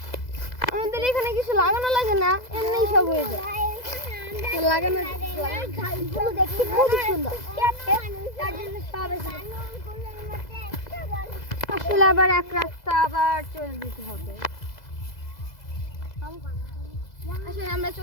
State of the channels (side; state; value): right; late; 2.0 ms